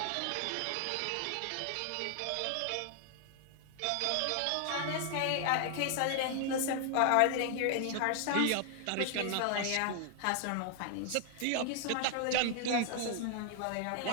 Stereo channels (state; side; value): different; both; correlation 0.00